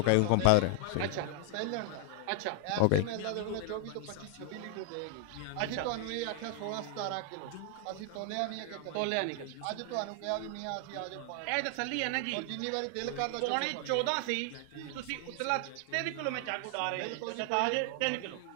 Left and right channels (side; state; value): both; different; correlation 0.00